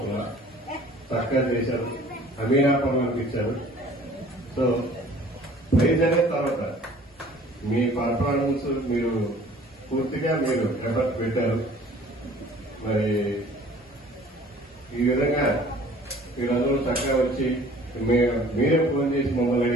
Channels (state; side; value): normal; both; correlation 0.51